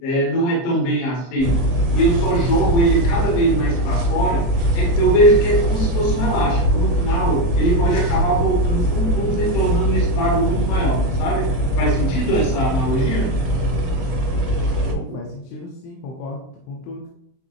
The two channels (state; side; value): late; right; 23 ms